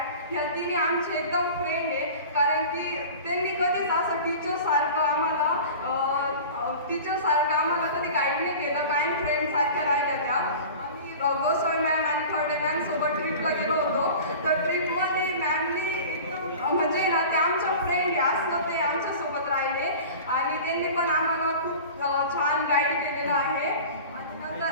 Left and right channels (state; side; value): inverted; both; correlation -0.37